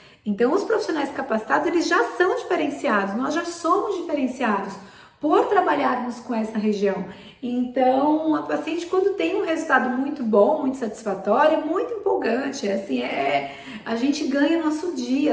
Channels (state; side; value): identical; both; correlation 1.00